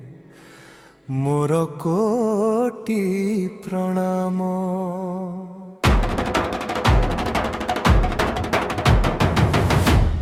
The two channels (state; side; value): identical; both; correlation 1.00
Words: মোর কোটি প্রণাম।